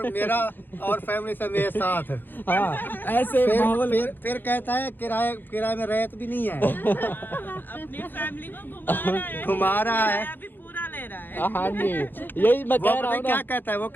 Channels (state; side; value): late; right; 0.093 ms